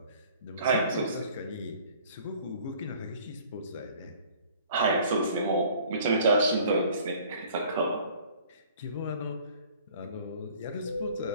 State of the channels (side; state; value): both; inverted; correlation -0.52